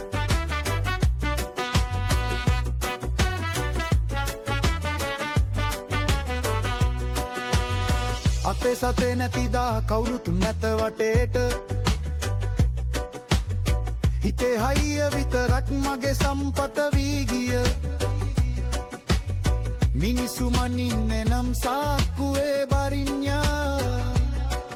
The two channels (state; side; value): identical; both; correlation 1.00